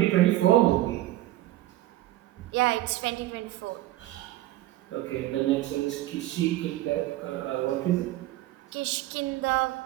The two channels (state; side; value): quieter; left; 15.9 dB